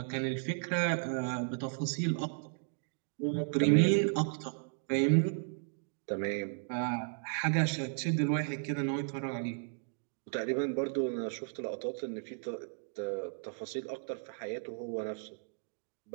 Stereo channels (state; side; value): silent; left; digital silence